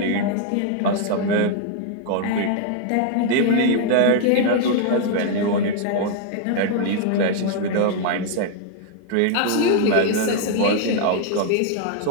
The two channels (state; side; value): different; both; correlation 0.00